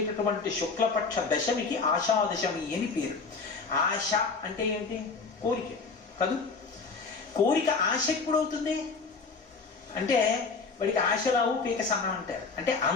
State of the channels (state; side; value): quieter; right; 4.6 dB